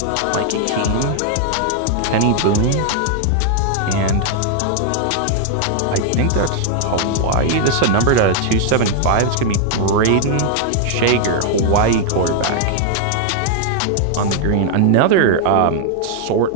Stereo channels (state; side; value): different; both; correlation 0.00